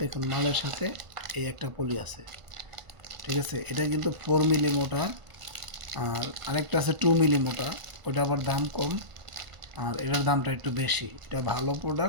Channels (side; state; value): left; late; 1.4 ms